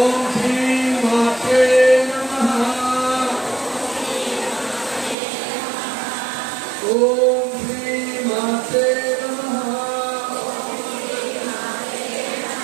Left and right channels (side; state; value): left; drops out; at 5.2 s